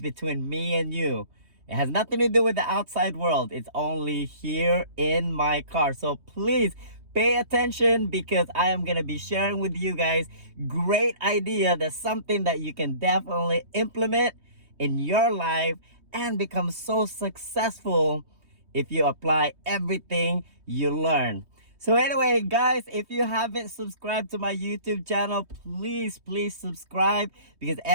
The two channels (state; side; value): late; left; 3.2 ms